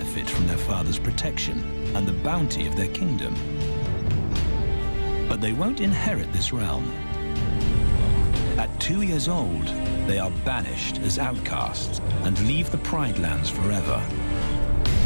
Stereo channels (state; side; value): inverted; both; correlation -1.00